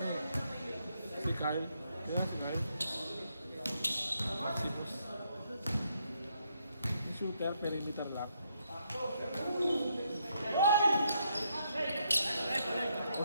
eh. Si Kyle. Kaya si Kyle. Si Boss. Yung shooter, perimeter lock. O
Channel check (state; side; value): inverted; both; correlation -0.76